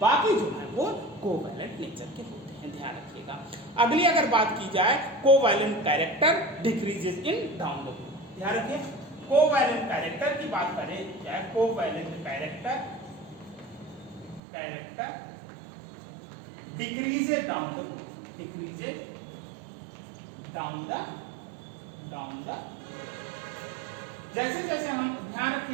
जो है वो कोवैलेंट नेचर के होते हैं। ध्यान रखिएगा। अगली अगर बात की जाए, covalent character decreases in down the group. ध्यान रखिए, कोवैलेंट कैरेक्टर की बात करें, क्या है covalent character decreases down the group, decreases down the जैसे जैसे हम, ध्यान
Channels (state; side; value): drops out; left; at 14.4 s